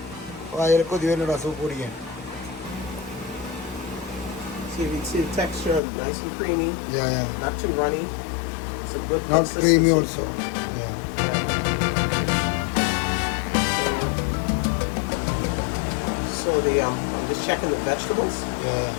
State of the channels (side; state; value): right; drops out; at 5.8 s